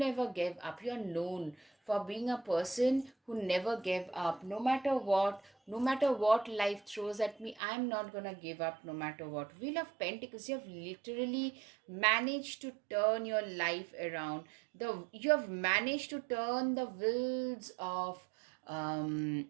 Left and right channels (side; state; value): left; drops out; at 7.6 s